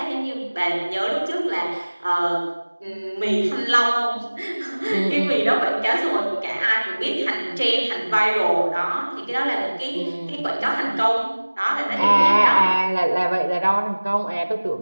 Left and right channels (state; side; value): inverted; both; correlation -1.00